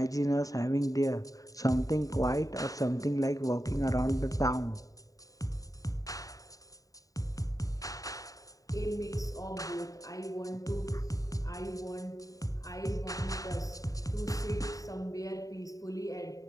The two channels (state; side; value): late; right; 0.17 ms